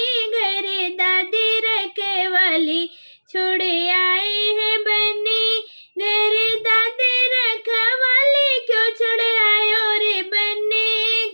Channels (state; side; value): inverted; both; correlation -1.00